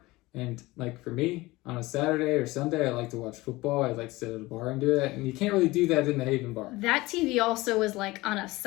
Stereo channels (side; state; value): right; quieter; 20.4 dB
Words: and like for me, on a Saturday or Sunday, I like to watch football. I like to sit at a bar and do that, and you can't really do that in the Haven bar. That TV also was like on a